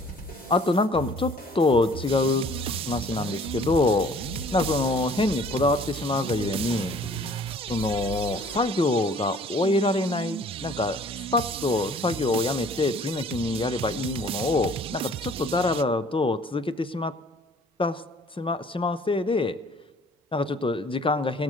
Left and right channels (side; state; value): both; normal; correlation 0.54